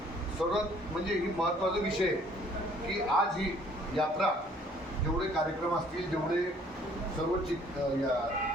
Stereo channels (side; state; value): both; normal; correlation 0.59